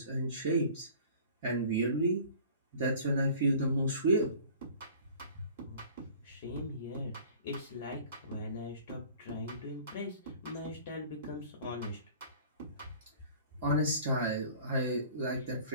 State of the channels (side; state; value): both; inverted; correlation -0.47